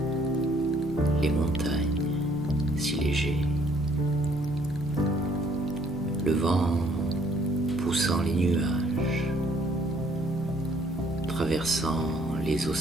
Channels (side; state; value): both; normal; correlation 0.63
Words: les montagnes si léger. Le vent poussant les nuages, traversant les